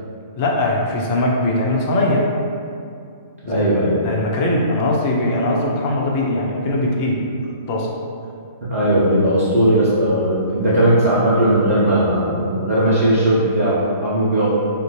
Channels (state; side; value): inverted; both; correlation -0.49